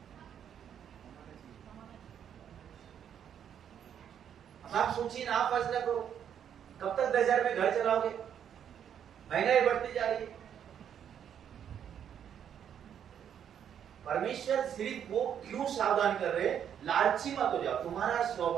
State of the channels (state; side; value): quieter; left; 8.9 dB